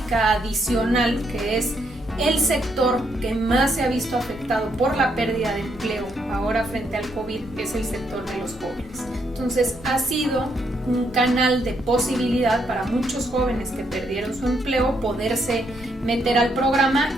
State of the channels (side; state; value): both; normal; correlation 0.75